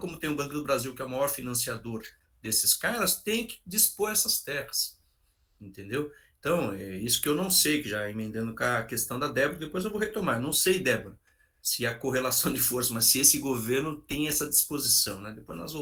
tem o Banco do Brasil, que é o maior financiador desses caras, tem que dispor essas terras. Entendeu? Então, é isso que eu não sei, que já emendando com a questão da Débora, depois eu vou retomar. Não sei, Débora, se há correlação de força, mas se esse governo tem essa disposição, né? Depois nós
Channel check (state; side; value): identical; both; correlation 1.00